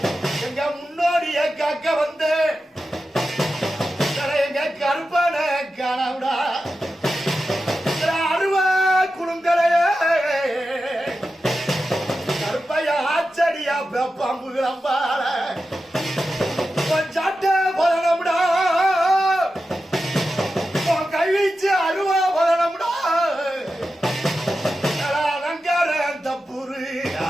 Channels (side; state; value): both; normal; correlation 0.91